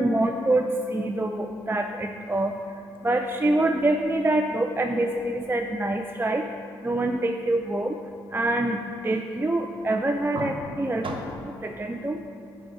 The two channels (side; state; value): both; normal; correlation 0.81